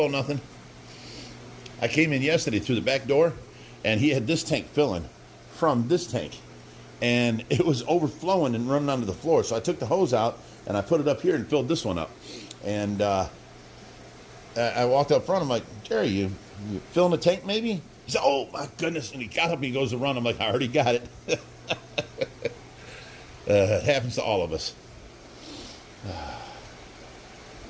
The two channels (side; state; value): both; identical; correlation 1.00